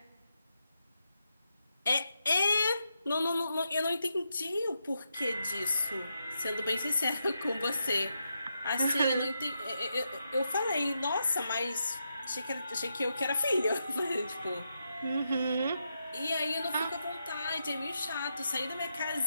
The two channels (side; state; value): both; inverted; correlation -0.84